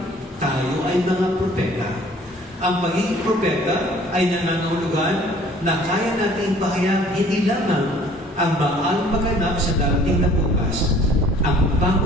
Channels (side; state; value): both; normal; correlation 0.54